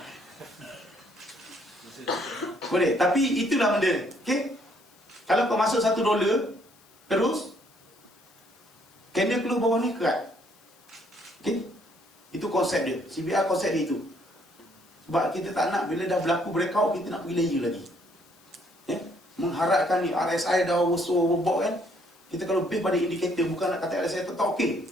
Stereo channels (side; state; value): left; noise; hiss, 29 dB below the sound